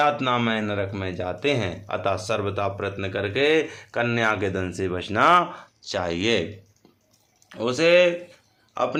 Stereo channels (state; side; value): identical; both; correlation 1.00